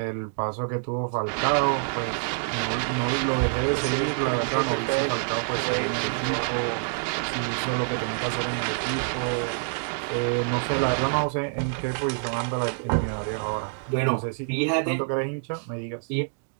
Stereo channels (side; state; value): left; silent; digital silence